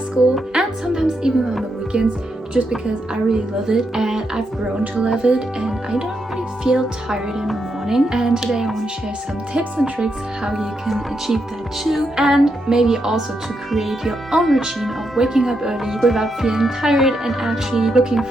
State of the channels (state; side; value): normal; both; correlation 0.82